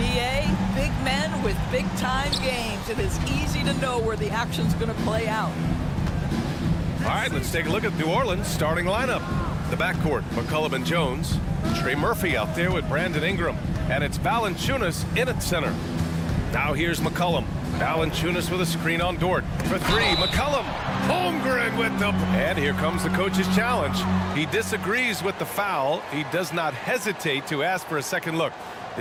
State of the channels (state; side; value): identical; both; correlation 1.00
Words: big men with big-time games. It is easy to know where the action's going to play out. All right, let's take a look at New Orleans' starting lineup. The backcourt, McCollum and Jones. Trey Murphy out there with Brandon Ingram. And it's Valanciunas in at center. Now here's McCollum. Valanciunas with a screen on Dort. For three, McCollum. Holmgren with the... And here comes the coach's challenge. He disagrees with the foul. He does not hesitate to ask for a second look.